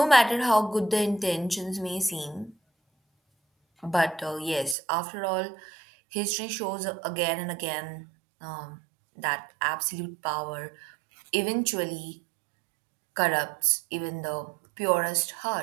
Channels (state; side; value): drops out; left; at 4.8 s